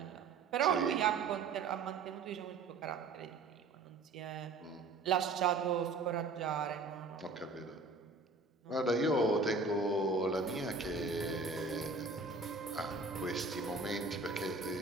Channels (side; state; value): left; quieter; 4.0 dB